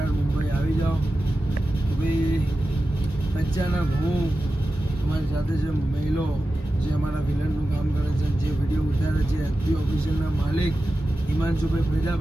મુંબઈ આવી જાઓ. તો ભાઈ અચાનક હું અમારી સાથે જે મહિલો જે અમારા વિલનનું કામ કરે છે, જે વિડીયો ઉતારે છે, એચપી ઓફિશિયલના માલિક હિમાંશુભાઈ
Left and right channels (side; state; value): both; normal; correlation 0.93